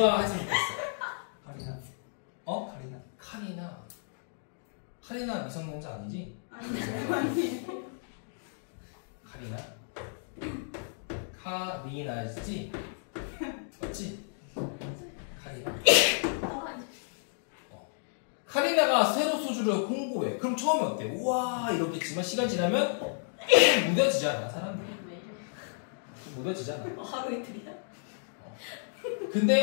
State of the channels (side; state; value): right; silent; digital silence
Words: 했으면 좋겠어? 카리나. 카리나 미성년자 아니지? 아니에요. 카리나지? 맞지? 카리나. 카리나가 새로 소주를 홍보해. 그럼 처음에 어때? 우와 이렇겠지만 시간 지나면 무뎌지잖아 사람들이. 무뎌지잖아. 하루 이틀이야?